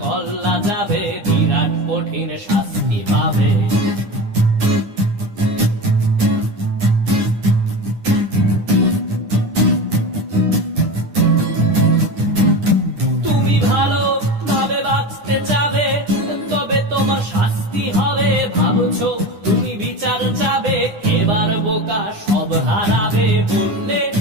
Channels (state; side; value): late; left; 9.9 ms